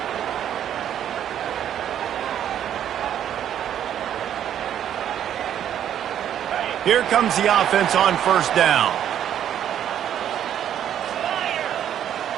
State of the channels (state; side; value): quieter; left; 10.1 dB